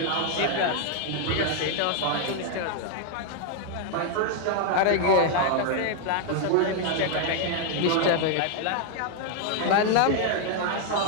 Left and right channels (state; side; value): different; both; correlation 0.00